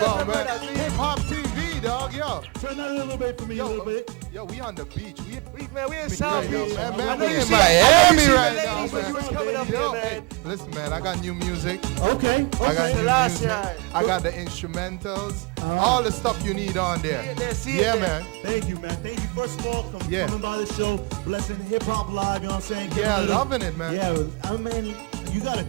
my brother. Hip Hop TV, dog. Yo, we on the beach. We in South Beach. Now, man, I know we you in see Miami right the now, ladies when man. you was coming up Yo, here, man. hey, listen, man, I got new music. Okay. I got new Selassie. music. I got the instrumentals. All the stuff you need on there. Yeah, man. Thank you, man. Hey, first of all, for Yeah. coming by the show, Hip Hop Live, you know what I'm saying? Yeah, loving it, man. Yeah, I mean, you got a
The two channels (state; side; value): quieter; left; 28.9 dB